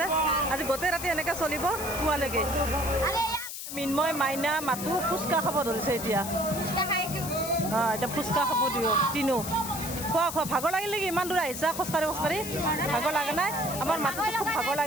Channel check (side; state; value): left; noise; hiss, 8 dB below the sound